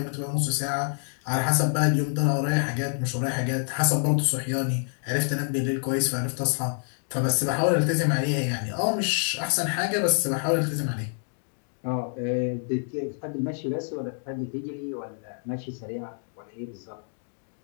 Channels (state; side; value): silent; right; 56 dB below the other